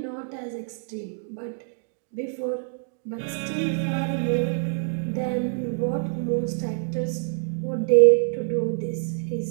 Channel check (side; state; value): left; silent; digital silence